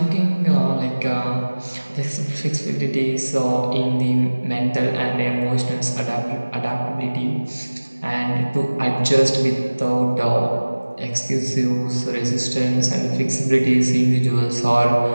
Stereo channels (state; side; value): inverted; both; correlation -1.00